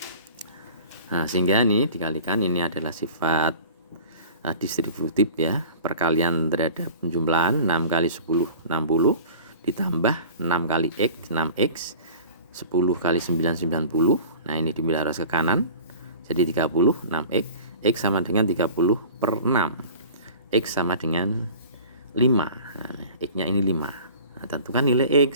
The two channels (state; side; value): inverted; both; correlation -0.42